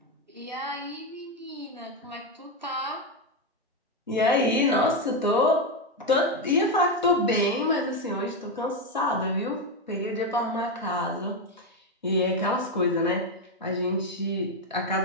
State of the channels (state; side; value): normal; both; correlation 0.08